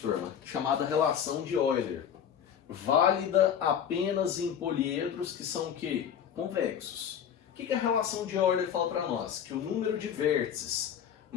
turma, chamada relação de Euler. Válida apenas em poliedros que são o quê? Convexos. O que a relação de Euler fala para nós? Que o número de vértices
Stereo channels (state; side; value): quieter; right; 8.8 dB